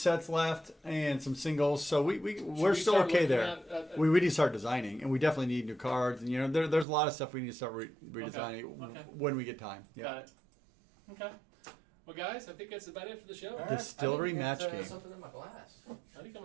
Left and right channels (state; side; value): drops out; left; at 6.9 s